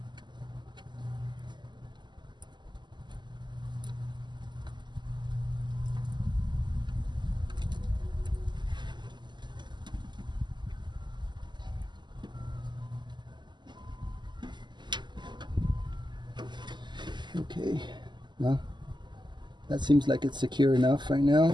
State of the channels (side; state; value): left; late; 0.21 ms